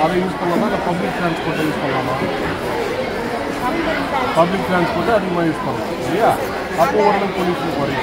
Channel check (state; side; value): identical; both; correlation 1.00